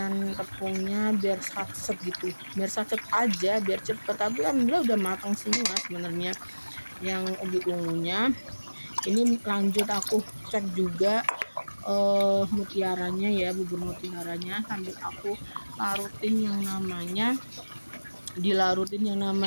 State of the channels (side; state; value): both; inverted; correlation -1.00